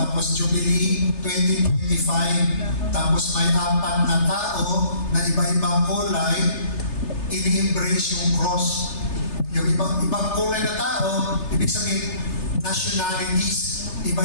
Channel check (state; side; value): late; right; 3.3 ms